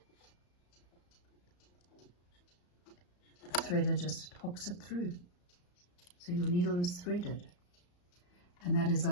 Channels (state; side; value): late; right; 34 ms